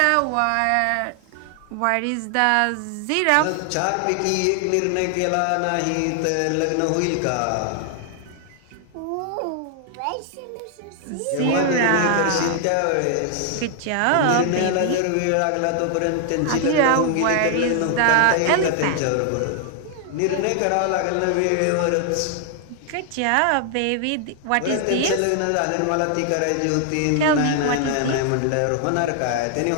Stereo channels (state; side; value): different; both; correlation 0.00